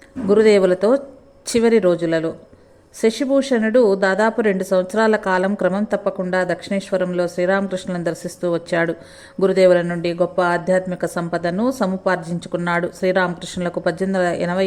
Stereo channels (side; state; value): both; identical; correlation 1.00